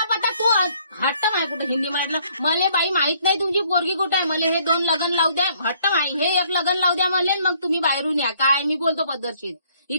पता. तू हट्ट माय कुठे हिंदी म्हटलं मले बाई माहित नाही तुमची पोरगी कुठे आहे. मला हे 2 लग्न लावू द्या. हट्ट माई हे 1 लग्न लावू द्या मले, मग तुम्ही बाहेरून या. काय मी बोलतो पद्धतशीर,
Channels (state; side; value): inverted; both; correlation -0.63